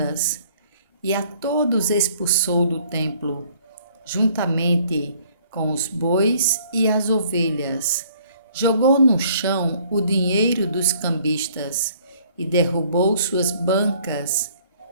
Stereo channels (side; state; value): both; inverted; correlation -0.60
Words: e a todos expulsou do templo, juntamente com os bois e as ovelhas. Jogou no chão o dinheiro dos cambistas e derrubou suas bancas.